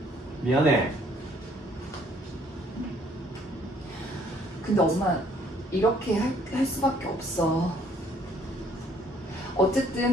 미안해. 근데 엄마 이렇게 할 수밖에 없어.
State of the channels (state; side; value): normal; both; correlation 0.62